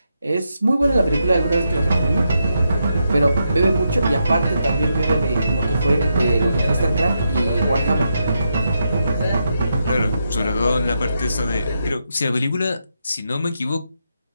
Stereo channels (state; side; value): inverted; both; correlation -0.83